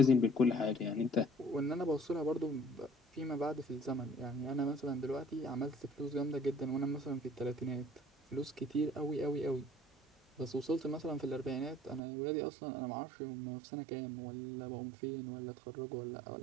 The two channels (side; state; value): left; drops out; at 12.0 s